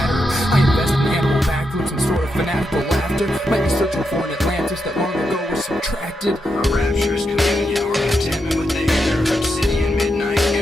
I invest in animal backwoods and sort of fanatical laughter. Might be searching for an Atlantis that long ago was subtracted. A rapturous communion or contentment with the inner obsidian midnight.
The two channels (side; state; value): both; normal; correlation 0.84